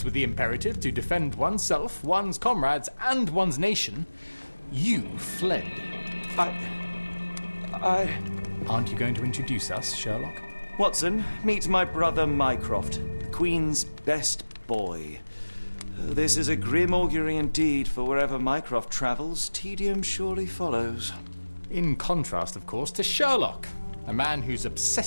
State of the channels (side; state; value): both; inverted; correlation -1.00